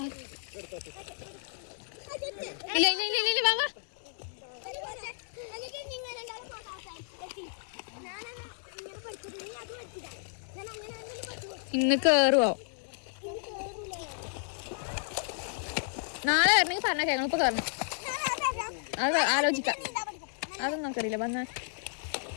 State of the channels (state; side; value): silent; right; digital silence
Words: ഇല്ല ഇല്ല ഇല്ല ഇല്ല വാ വാ. ഇന്ന് കേറുവോ? നാളെ വരണമെങ്കിൽ പറഞ്ഞ കേൾക്കണം. ഇപ്പൊ കയറണം, അത് ആലോചിക്കാം. അതൊന്നും നമുക്കറിയില്ല. വന്ന